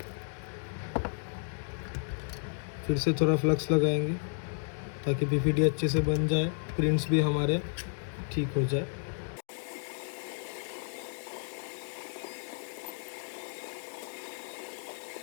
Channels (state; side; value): silent; right; digital silence